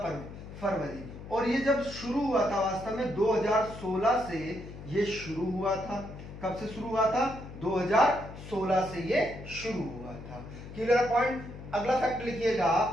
फरवरी। और ये जब शुरू हुआ था, वास्तव में 2016 से ये शुरू हुआ था। कब से शुरू हुआ था? 2016 से ये शुरू हुआ था। Clear point? अगला फैक्ट लिखिएगा,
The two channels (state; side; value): noise; left; hum, 13 dB below the sound